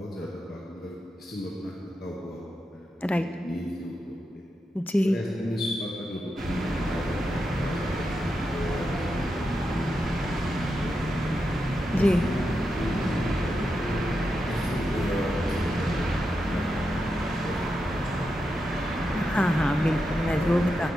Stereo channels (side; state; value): both; normal; correlation 0.87